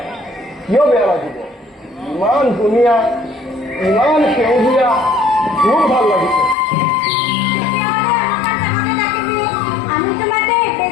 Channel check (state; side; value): drops out; right; at 6.6 s